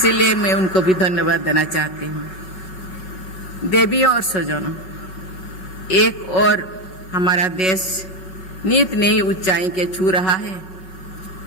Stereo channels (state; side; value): late; right; 5.7 ms